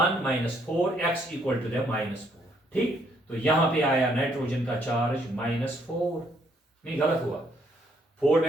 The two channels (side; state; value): both; normal; correlation 0.69